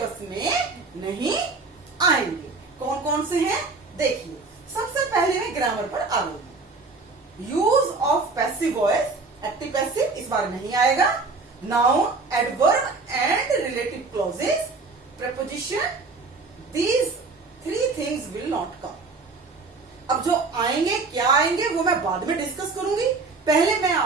में नहीं आएंगे. कौन कौन से हैं देखिए. सबसे पहले मैं ग्रामर पर आ गई. Use of passive voice, active passive इस बार नहीं आएगा. Noun, adverb and relative clauses, preposition, these 3 things will not come. अब जो आएंगे क्या आएंगे वो मैं बाद में डिस्कस करूंगी. पहले मैं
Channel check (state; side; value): quieter; left; 3.9 dB